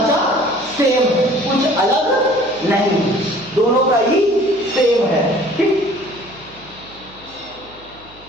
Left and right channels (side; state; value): right; noise; hum, 25 dB below the sound